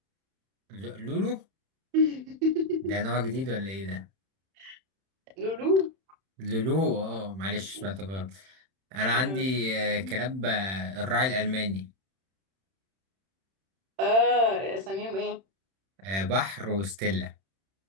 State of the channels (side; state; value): left; late; 31 ms